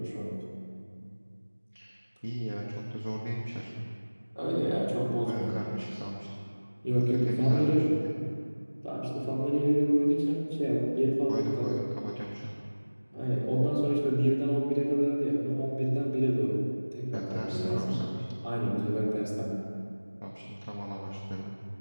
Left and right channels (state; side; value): inverted; both; correlation -1.00